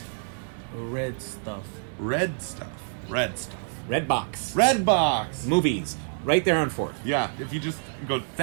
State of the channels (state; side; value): silent; left; 60 dB below the other